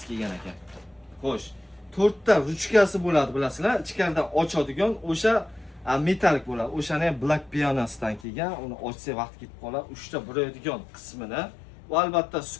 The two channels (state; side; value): drops out; right; at 8.2 s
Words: kelgan ekan? Xo'sh, 4 ta ruchkasi bo'ladi, bilasizlar. Ichkaridan ochadigan o'sha metalik bo'ladi. O'shani ham black pianosidan kelgan. Uni ochsa vaqt ketib qoladi. 3 ta buraydigan qismini va albatta